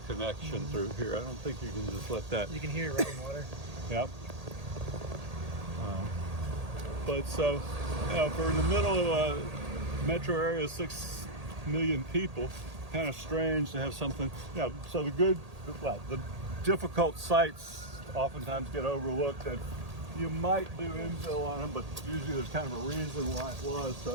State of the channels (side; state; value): left; late; 1.8 ms